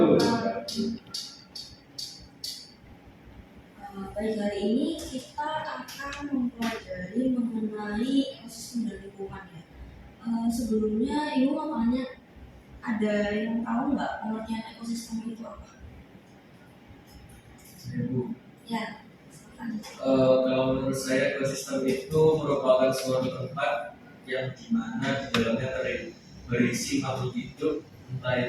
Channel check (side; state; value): both; identical; correlation 1.00